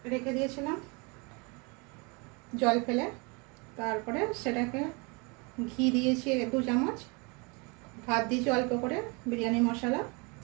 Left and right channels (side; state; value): left; quieter; 30.4 dB